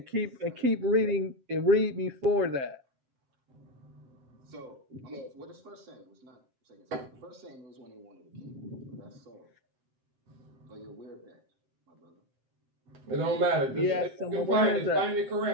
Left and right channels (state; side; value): late; left; 7.6 ms